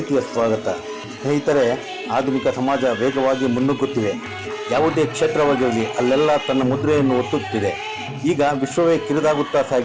ಸ್ವಾಗತ. ಸ್ನೇಹಿತರೆ, ಆಧುನಿಕ ಸಮಾಜ ವೇಗವಾಗಿ ಮುನ್ನುಗ್ಗುತ್ತಿದೆ. ಯಾವುದೇ ಕ್ಷೇತ್ರವಾಗಿರಲಿ ಅಲ್ಲೆಲ್ಲ ತನ್ನ ಮುದ್ರೆಯನ್ನು ಒತ್ತುತ್ತಿದೆ. ಈಗ ವಿಶ್ವವೇ ಕಿರಿದಾಗುತ್ತಾ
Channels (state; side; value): identical; both; correlation 1.00